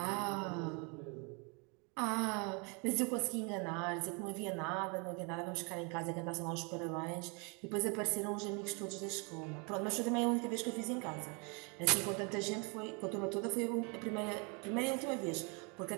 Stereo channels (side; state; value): left; quieter; 33.0 dB